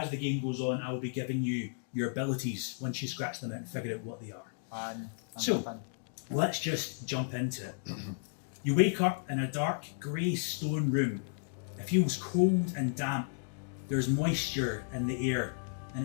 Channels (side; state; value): right; silent; digital silence